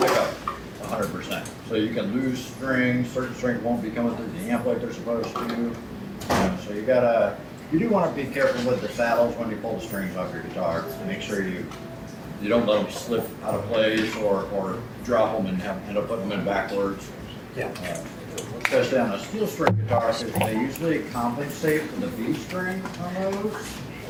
100%. So you can lose strings. Certain strings won't be coming through the amp like they're supposed to. So you do want to be careful with the saddles when you pull the strings off your guitar. Make sure you don't let them slip out of place or drop them and end up putting them in backwards. Yeah. Especially on a steel string guitar, because they usually compensate for the B string on those.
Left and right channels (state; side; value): identical; both; correlation 1.00